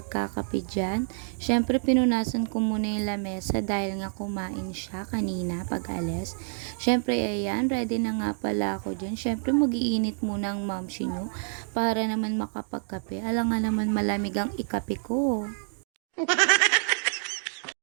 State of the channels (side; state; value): left; silent; 60 dB below the other